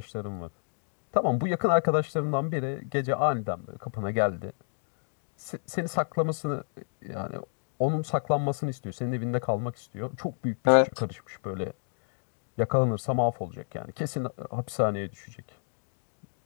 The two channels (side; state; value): right; silent; digital silence